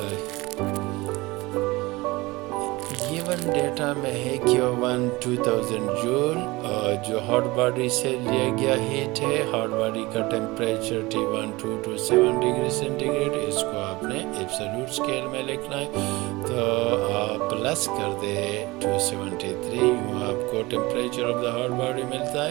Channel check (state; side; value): quieter; left; 21.8 dB